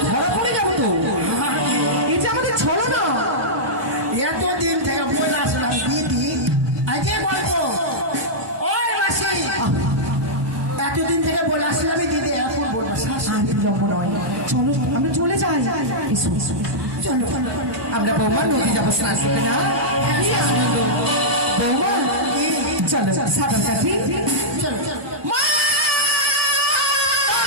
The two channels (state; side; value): late; left; 1.2 ms